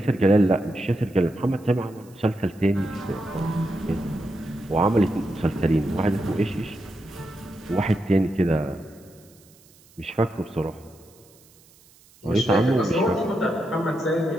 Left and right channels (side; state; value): right; noise; hiss, 28 dB below the sound